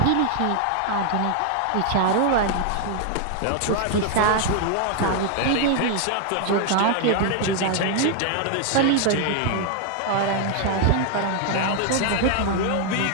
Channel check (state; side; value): different; both; correlation 0.00